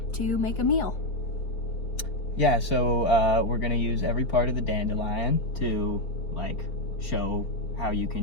to make a meal. Yeah, so we're gonna use every part of the dandelion to like show how you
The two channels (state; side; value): late; right; 4.8 ms